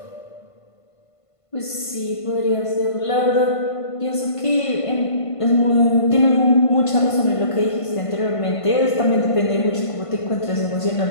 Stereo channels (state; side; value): late; right; 1.5 ms